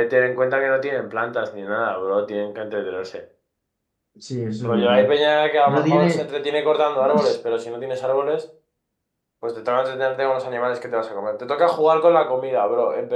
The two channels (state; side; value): identical; both; correlation 1.00